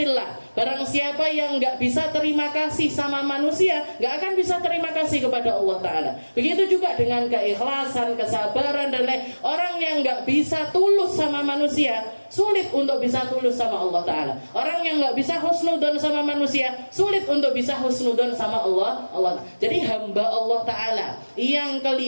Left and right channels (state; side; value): inverted; both; correlation -1.00